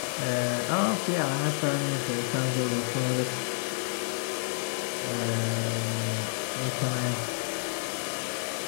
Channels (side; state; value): right; silent; digital silence